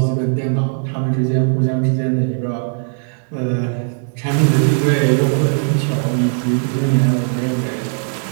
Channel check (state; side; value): silent; left; 63 dB below the other